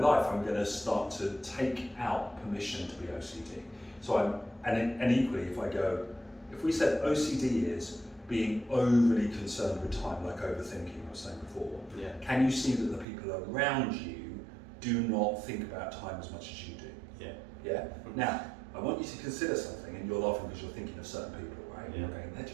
I'm going to start to take out permission to be OCD. So and equally, if we said OCD is being overly concerned with time, like overthinking I was saying before, can you see that the people around you do not think about time as much as you do. Yeah. Yeah? Now, I want you to consider something, and you're laughing because you're thinking of certain people, right? Yeah. You're going, they're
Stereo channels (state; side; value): drops out; left; at 13.1 s